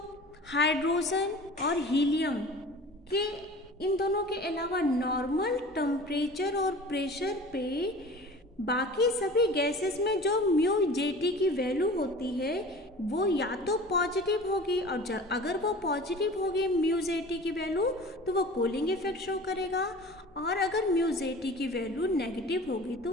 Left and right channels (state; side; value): normal; both; correlation 0.41